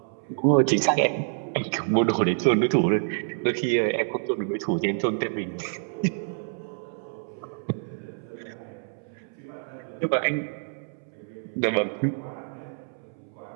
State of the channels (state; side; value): silent; left; 60 dB below the other